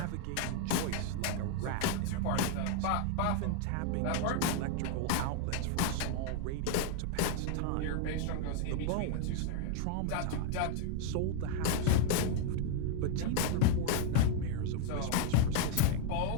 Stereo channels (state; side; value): different; both; correlation 0.00